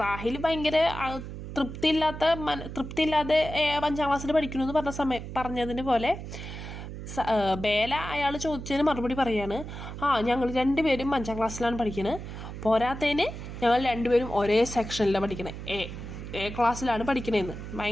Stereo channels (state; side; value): noise; right; hum, 9 dB below the sound